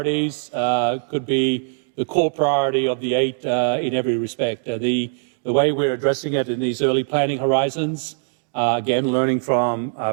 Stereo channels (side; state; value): left; silent; digital silence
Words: could be core priority of the 8 in every respect. The way we're addressing it in these early planning horizons, again, learning from